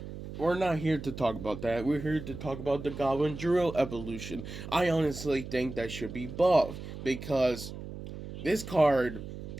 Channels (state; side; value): noise; right; hum, 10 dB below the sound